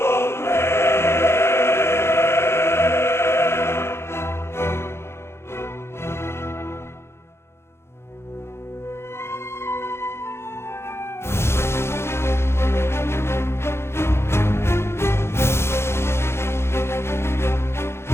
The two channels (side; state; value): right; late; 0.12 ms